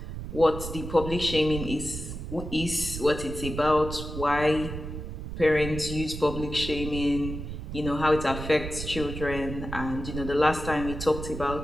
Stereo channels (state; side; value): noise; right; rumble, 7 dB below the sound